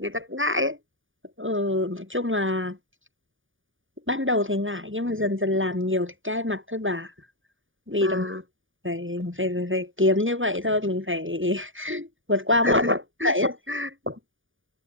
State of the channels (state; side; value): late; left; 0.57 ms